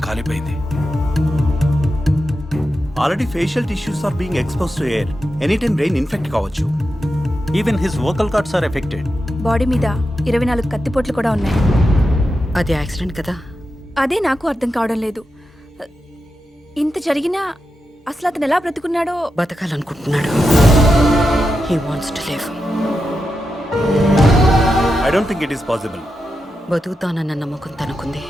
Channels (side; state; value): both; normal; correlation 0.88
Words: కాలిపోయింది. Already facial tissues are being expose to air. Any time brain infect కావచ్చు. Even his vocal cords are affected. Body మీద 24 కత్తిపోట్లు కూడా ఉన్నాయి. అది యాక్సిడెంట్ కదా? అదే నాకు అర్థం కావడం లేదు. ఇంత జరిగినా అసలు అతను ఎలా బ్రతుకున్నాడో. బతకాలనుకుంటున్నాడు. He wants to live. I don't think it is possible. బతుకుతానన్న నమ్మకం తనకుంది.